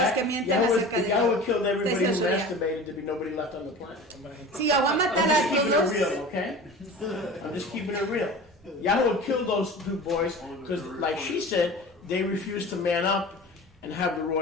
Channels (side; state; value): both; normal; correlation 0.37